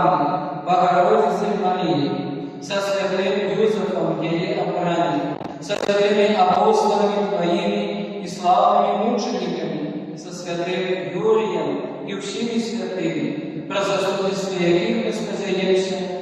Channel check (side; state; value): both; identical; correlation 1.00